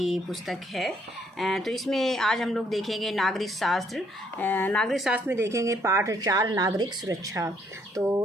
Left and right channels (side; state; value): both; normal; correlation 0.68